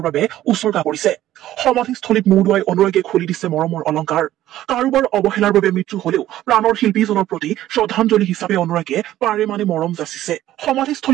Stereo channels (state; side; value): quieter; left; 13.7 dB